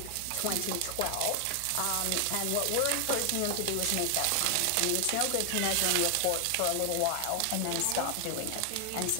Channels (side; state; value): both; different; correlation 0.00